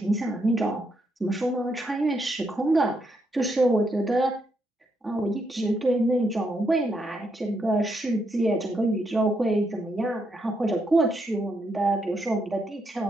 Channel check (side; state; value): both; normal; correlation 0.78